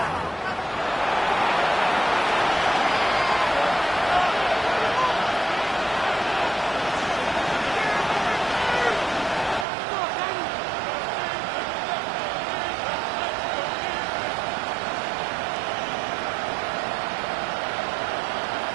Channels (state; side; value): drops out; left; at 9.7 s